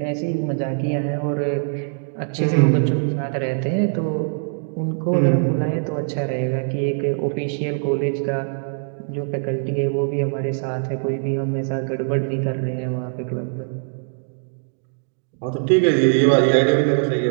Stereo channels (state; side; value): silent; left; digital silence